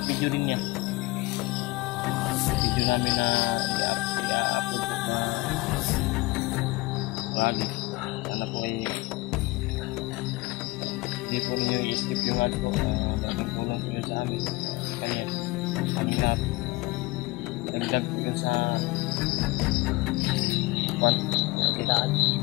video din niya. Video namin na i-upload po na vlog. Sana po ay hindi po ninyo ads po, malaking tulong po yun sa amin. Kaya kami lahat, dagdag po yun sa Kitaan.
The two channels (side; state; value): right; quieter; 21.8 dB